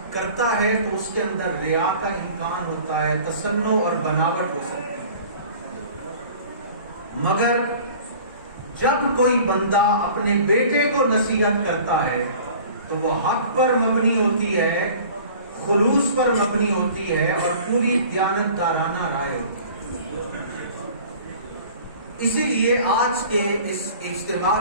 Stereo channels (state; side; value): inverted; both; correlation -0.46